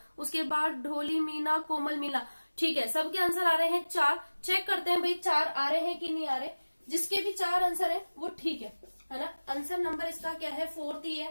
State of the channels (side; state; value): both; inverted; correlation -1.00